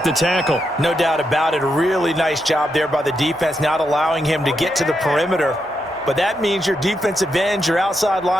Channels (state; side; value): normal; both; correlation 0.83